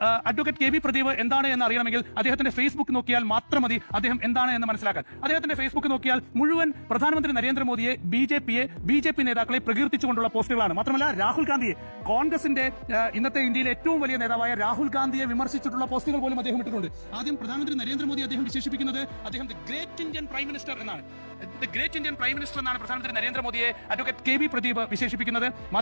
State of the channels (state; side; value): inverted; both; correlation -1.00